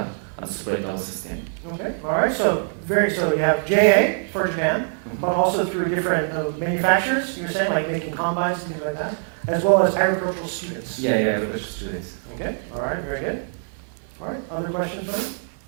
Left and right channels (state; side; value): silent; left; 62 dB below the other